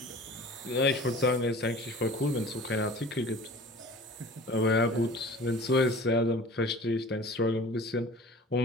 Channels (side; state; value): both; normal; correlation 0.43